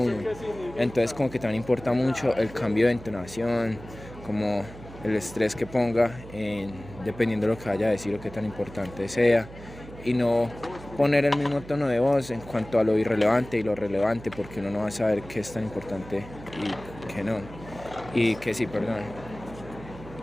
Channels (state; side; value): noise; right; hum, 16 dB below the sound